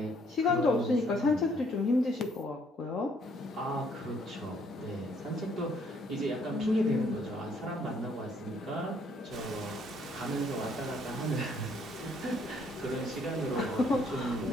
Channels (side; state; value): both; normal; correlation 0.66